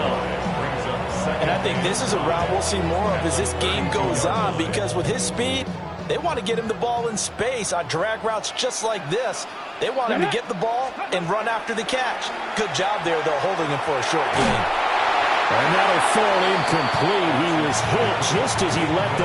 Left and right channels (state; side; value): identical; both; correlation 1.00